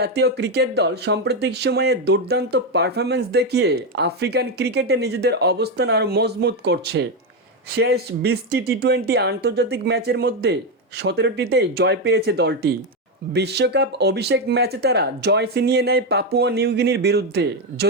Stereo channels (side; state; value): both; normal; correlation 0.08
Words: ক্রিকেট দল সাম্প্রতিক সময়ে দুর্দান্ত পারফরম্যান্স দেখিয়ে আফ্রিকান ক্রিকেটে নিজেদের অবস্থান আরও মজবুত করছে। শেষ 20টি টি-20 আন্তর্জাতিক ম্যাচের মধ্যে 17টিতেই জয় পেয়েছে দলটি। বিশ্বকাপ অভিষেক ম্যাচে তারা জয় ছিনিয়ে নেয় পাপুয়া নিউগিনির বিরুদ্ধে,